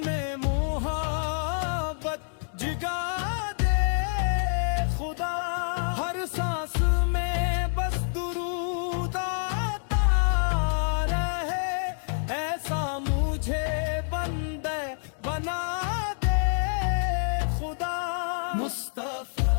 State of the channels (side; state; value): right; silent; digital silence